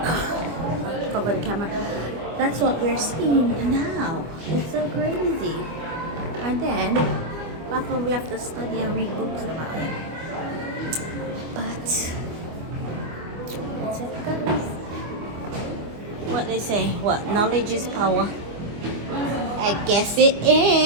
Cover the camera. That's what we're seeing now. It's so crazy. And then back when we have to study and read books about it. But that's it, guys. What they say? What? Knowledge is power. I guess it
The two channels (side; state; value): left; late; 25 ms